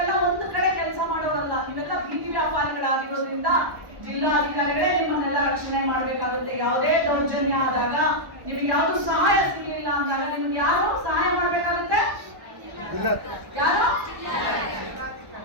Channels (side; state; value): left; late; 1.0 ms